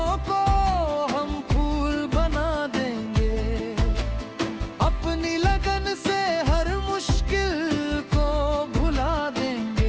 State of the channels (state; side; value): identical; both; correlation 1.00